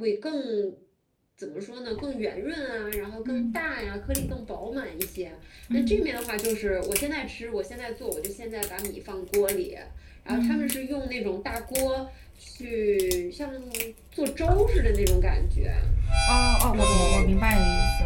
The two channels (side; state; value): both; identical; correlation 1.00